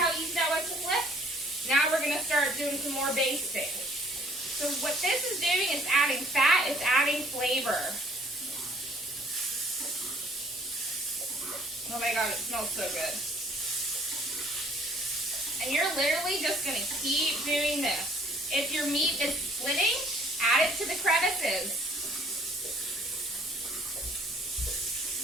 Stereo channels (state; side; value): normal; both; correlation 0.59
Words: easy that was to flip? Now we're going to start doing some more basting. So what this is doing is adding fat, it's adding flavor. Oh my god, it smells so good. And you're literally just going to keep doing this. If your meat is splitting, add it to the crevices.